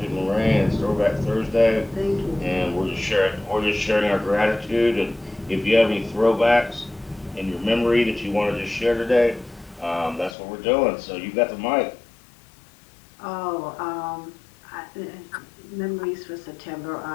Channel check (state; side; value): drops out; right; at 10.4 s